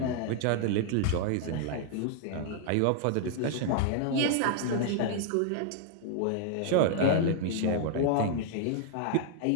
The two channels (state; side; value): different; both; correlation -0.01